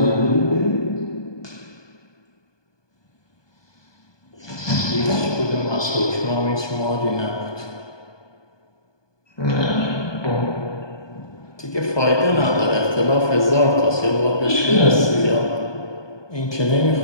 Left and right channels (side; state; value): right; late; 1.2 ms